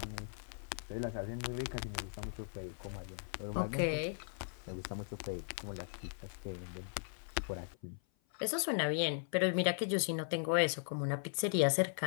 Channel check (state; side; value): silent; right; 52 dB below the other